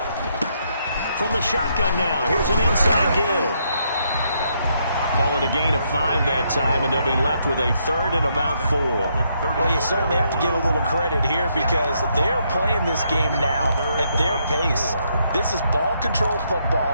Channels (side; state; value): both; inverted; correlation -0.75